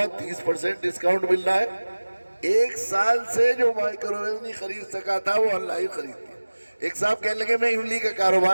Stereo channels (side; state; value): both; inverted; correlation -1.00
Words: 30% ڈسکاؤنٹ مل رہا ہے۔ 1 سال سے جو مائکرو ویو نہیں خرید سکا تھا وہ آن لائن خرید لیا۔ ایک صاحب کہنے لگے میں املی کا